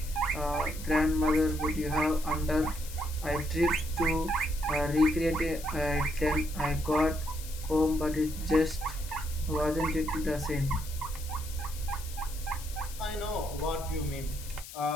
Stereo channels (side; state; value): left; noise; hiss, 14 dB below the sound